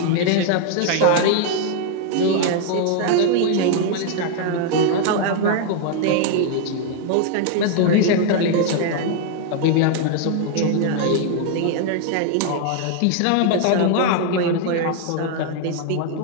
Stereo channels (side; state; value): both; different; correlation 0.00